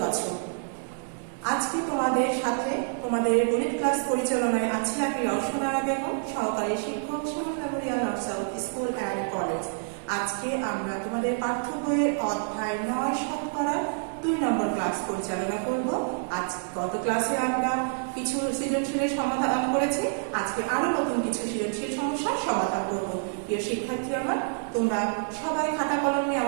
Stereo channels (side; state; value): left; silent; digital silence